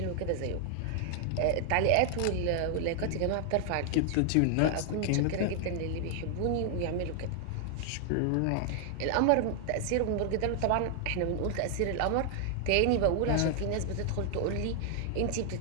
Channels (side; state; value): both; different; correlation 0.00